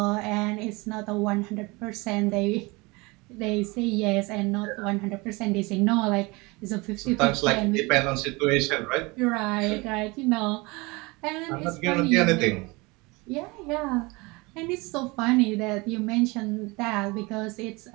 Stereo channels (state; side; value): quieter; left; 25.1 dB